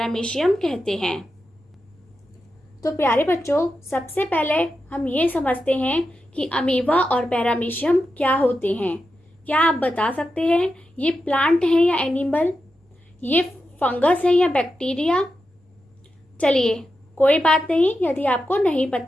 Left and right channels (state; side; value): normal; both; correlation 0.89